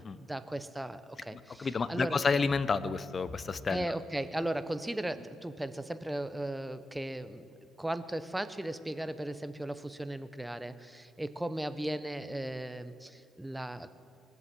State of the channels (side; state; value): both; normal; correlation 0.91